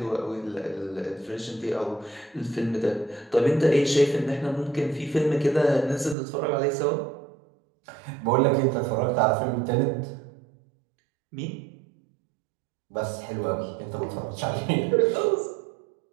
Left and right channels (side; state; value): left; drops out; at 6.2 s